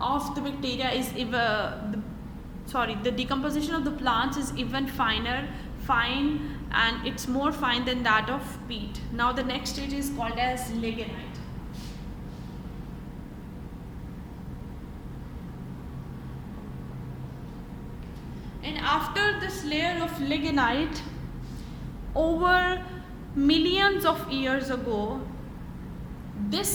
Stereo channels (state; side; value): identical; both; correlation 1.00